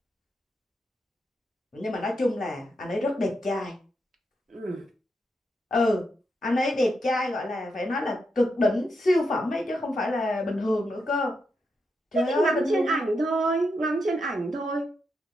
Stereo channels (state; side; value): normal; both; correlation 0.84